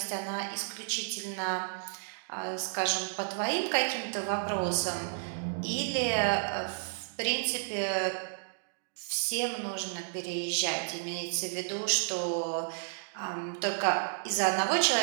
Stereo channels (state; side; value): silent; left; digital silence